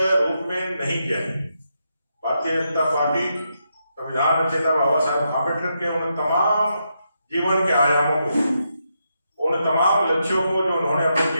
में नहीं गया है। भारतीय जनता पार्टी संविधान रचयिता बाबा साहेब अम्बेडकर के उन तमाम जीवन के आयामों को, उन तमाम लक्ष्यों को जो उन्होंने अपने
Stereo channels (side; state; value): both; inverted; correlation -0.82